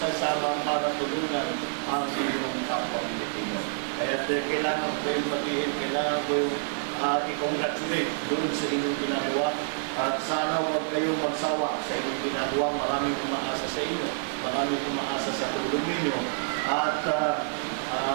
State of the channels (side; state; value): left; silent; digital silence